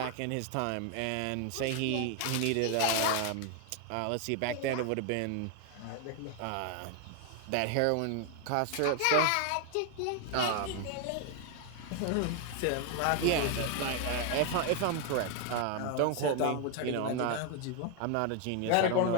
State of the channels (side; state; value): both; different; correlation 0.00